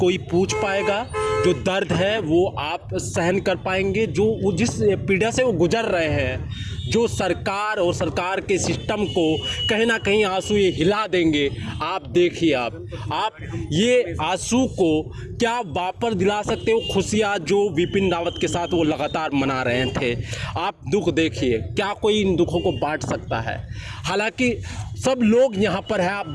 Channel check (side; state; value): both; identical; correlation 1.00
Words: पूछ पाएगा? जो दर्द है वो आप सहन कर पाएंगे? जो जिस पीड़ा से वो गुजर रहे हैं, जो सरकार और सरकार के सिस्टम को कहीं ना कहीं आंसू ये हिला देंगे। आप देखिए, आप ये आंसू को क्या वापस दिला सकते हो? खुशियाँ जो बिपिन रावत के साथ वो लगातार मना रहे थे, आप दुख देखिए, क्या कोई इन दुखों को बांट सकता है? हालांकि सब लोग यहाँ पर है, आप